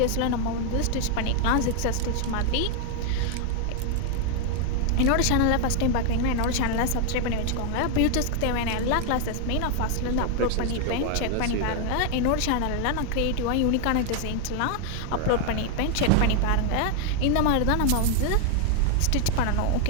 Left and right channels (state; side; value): different; both; correlation 0.01